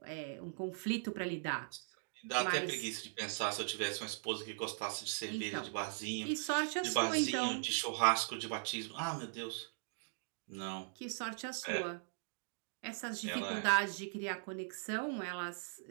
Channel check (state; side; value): silent; left; digital silence